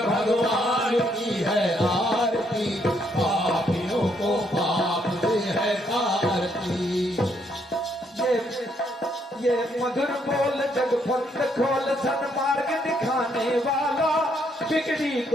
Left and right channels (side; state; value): both; normal; correlation 0.72